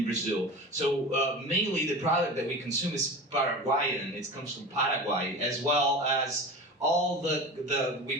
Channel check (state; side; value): normal; both; correlation 0.32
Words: Brazil. So mainly the product that we consume is Paraguayan. It comes from Paraguay, as well as all the we